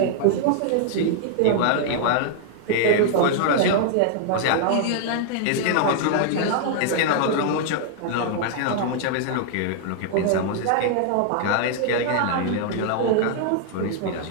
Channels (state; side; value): different; both; correlation -0.01